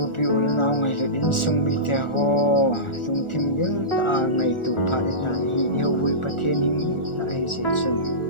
pi ul naw ngai lu din sung mi te ho sung thim gil ta ngai tu pha ta hi ho vui pathin hing ta hi se chun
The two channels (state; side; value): late; right; 1.4 ms